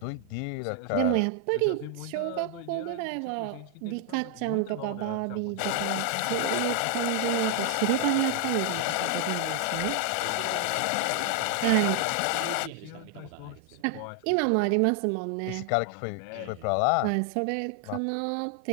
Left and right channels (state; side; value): different; both; correlation 0.00